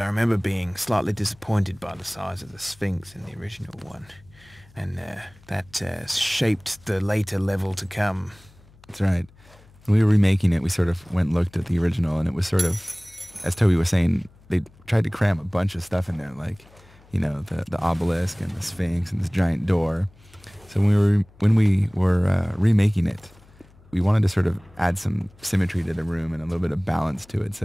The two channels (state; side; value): noise; left; hum, 27 dB below the sound